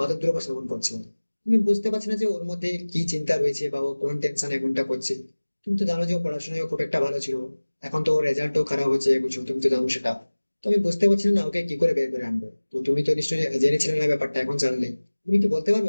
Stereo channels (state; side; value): inverted; both; correlation -1.00